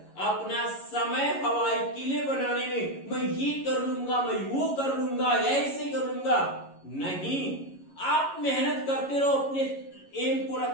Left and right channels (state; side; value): late; right; 11 ms